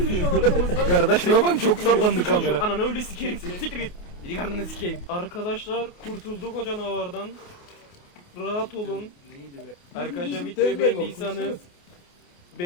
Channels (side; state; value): right; late; 28 ms